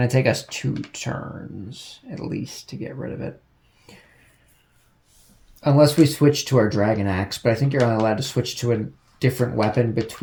to take us 2 turns at least to get rid of it. Unless we switch to our dragon axe, but I think you're only allowed to switch to a different weapon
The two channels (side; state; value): both; identical; correlation 1.00